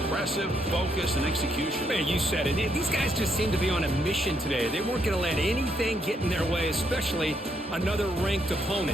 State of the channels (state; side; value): normal; both; correlation 0.75